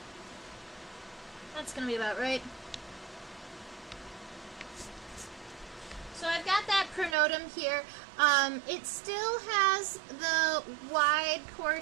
That's going to be about right. So I've got that pronotum here. It still has the wide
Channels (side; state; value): left; drops out; at 7.2 s